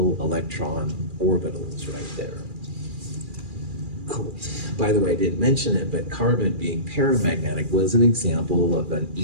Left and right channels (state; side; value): late; left; 2.4 ms